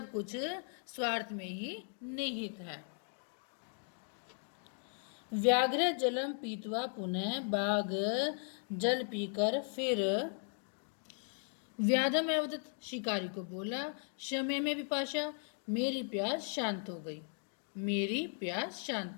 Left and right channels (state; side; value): silent; right; 53 dB below the other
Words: कुछ स्वार्थ में ही निहित है। व्याघ्र जलम पीतवा पुनः, बाघ जल पीकर फिर व्याधम अवदत, शिकारी को बोला, शमे में विपाशा, मेरी प्यास शांत हो गई, मेरी प्यास